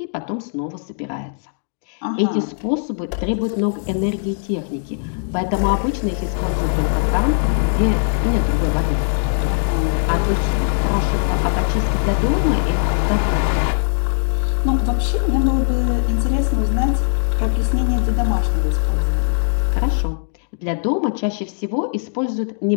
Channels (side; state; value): right; silent; digital silence